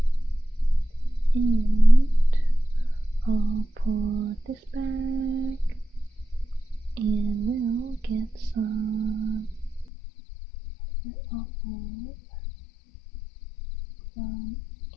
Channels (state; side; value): drops out; right; at 9.9 s